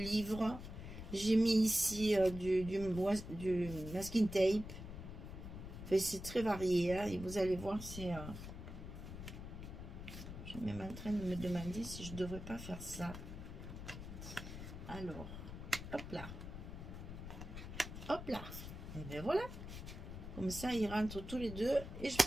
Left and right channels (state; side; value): noise; left; rumble, 9 dB below the sound